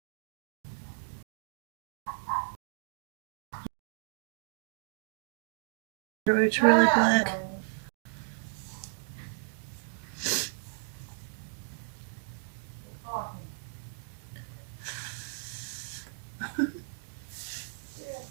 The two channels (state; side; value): silent; left; digital silence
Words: It's really black.